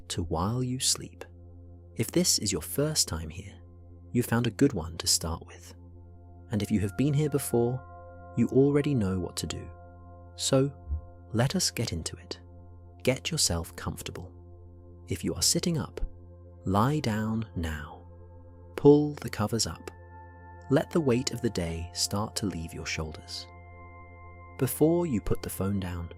to While You Sleep. If this is your first time here, you found a good one to start with. And if you have been here before, you already know what to do. So, let us get into it. Get yourself comfortable. If you are sitting up, lie down now. Pull the covers up. Let the weight of the day start to leave your shoulders. Before you put the phone down,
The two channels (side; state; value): both; identical; correlation 1.00